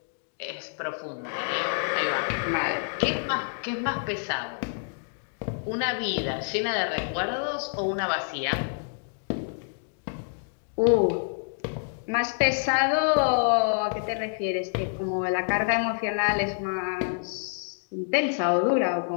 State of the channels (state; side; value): silent; right; digital silence